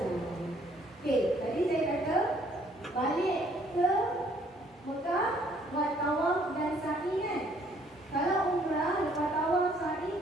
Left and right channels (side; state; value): both; normal; correlation 0.63